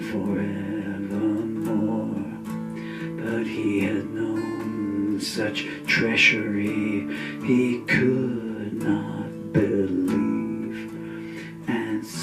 forevermore. But he had known such treachery he could not believe, and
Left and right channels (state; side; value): identical; both; correlation 1.00